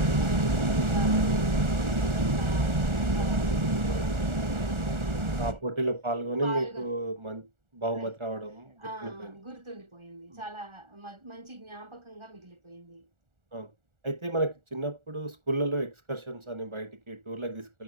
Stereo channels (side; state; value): left; late; 1.4 ms